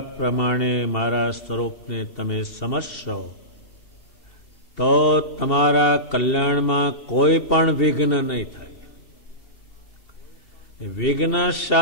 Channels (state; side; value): late; right; 2.7 ms